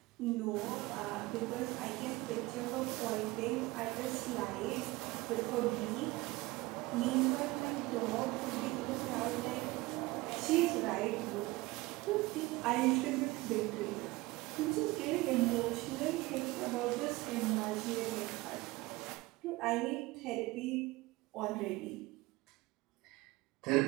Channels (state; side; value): quieter; left; 21.0 dB